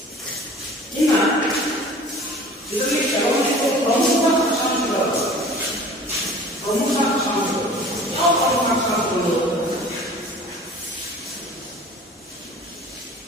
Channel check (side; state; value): both; normal; correlation 0.45